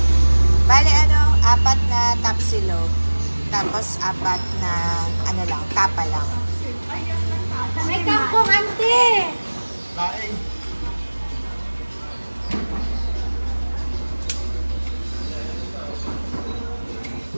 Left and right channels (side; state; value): both; inverted; correlation -1.00